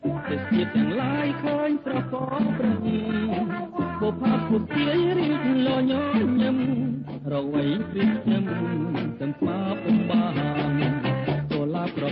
ទេសភាពទាំងឡាយឃើញស្រកប្រឹងបុព្វពុទាយរៀបលញញឹមរវៃព្រៀបខ្ញុំទាំងស្មាពុំបានចូលឡាប្រ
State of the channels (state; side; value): identical; both; correlation 1.00